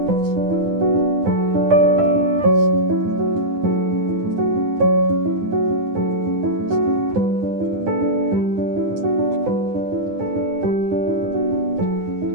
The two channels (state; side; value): late; left; 9.8 ms